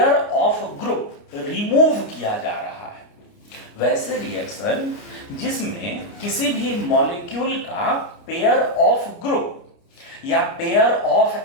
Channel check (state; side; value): late; right; 29 ms